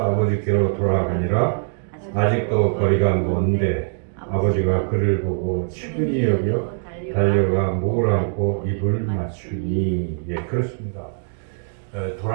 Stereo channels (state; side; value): silent; left; 63 dB below the other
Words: 돌아가니라. 아직도 거리가 먼데 아버지가 그를 보고 측은히 여겨 달려가 목을 안고 입을 맞추니. 예, 그렇습니다.